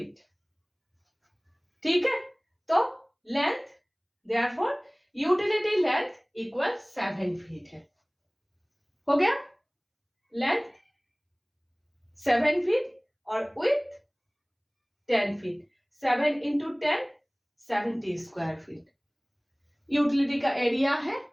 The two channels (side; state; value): both; identical; correlation 1.00